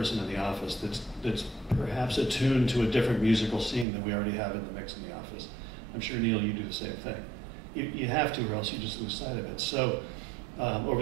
in the office that's perhaps attuned to a different musical scene than we already have in the mix in the office. I'm sure, Neil, you do the same thing. You have to, or else you just lose sight of it. So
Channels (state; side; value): drops out; left; at 3.9 s